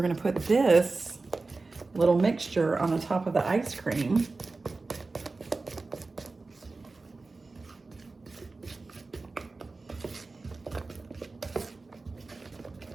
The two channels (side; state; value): left; quieter; 3.7 dB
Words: gonna put this little mixture on the top of the ice cream.